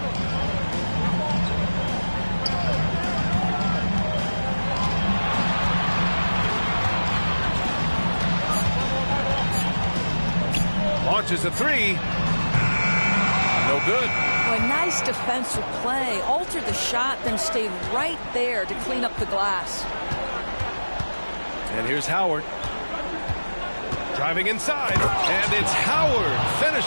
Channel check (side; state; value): both; inverted; correlation -1.00